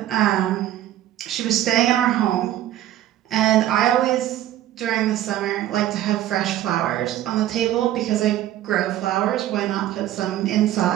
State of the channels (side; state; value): left; quieter; 12.9 dB